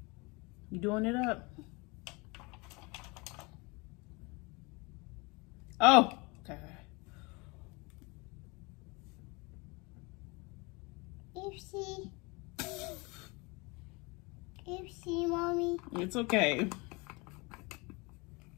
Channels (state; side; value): quieter; right; 27.3 dB